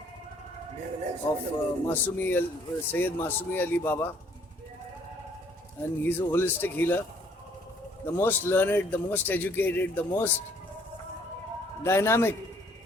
of Sayyid Masumi Ali Baba, and he's a holistic healer, the most learned, the most educated, the most dynamic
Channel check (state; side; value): normal; both; correlation 0.62